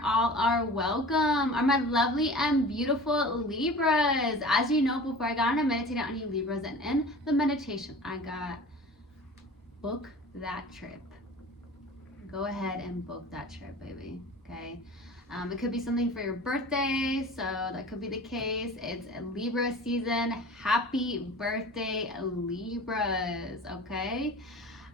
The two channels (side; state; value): both; normal; correlation 0.39